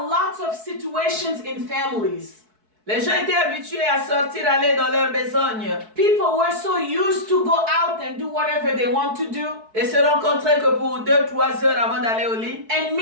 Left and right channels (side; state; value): left; late; 4.6 ms